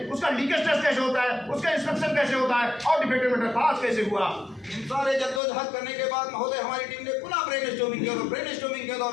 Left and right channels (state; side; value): drops out; right; at 5.4 s